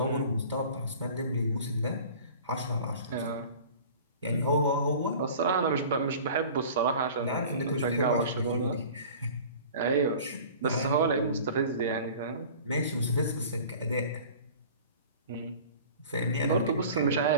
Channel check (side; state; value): both; inverted; correlation -0.43